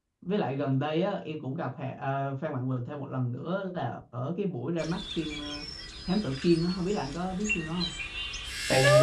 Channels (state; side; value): identical; both; correlation 1.00